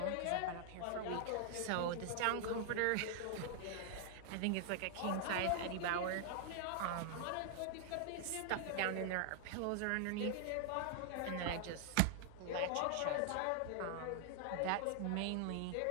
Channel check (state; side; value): different; both; correlation 0.00